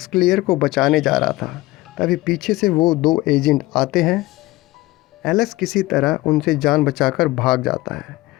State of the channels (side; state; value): right; quieter; 19.0 dB